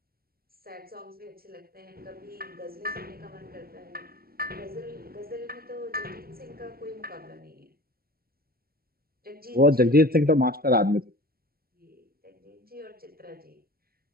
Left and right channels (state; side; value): late; left; 0.44 ms